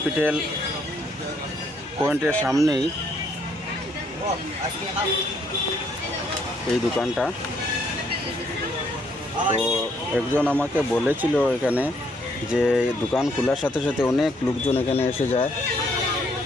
পয়েন্টের সামনেই এই দোকানটা। তো একজন আমাকে বলেছিল এখানে যে দোকান খোলার সাথে সাথে অনেক লোকজন এখানে এসে যায়,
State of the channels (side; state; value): both; normal; correlation 0.69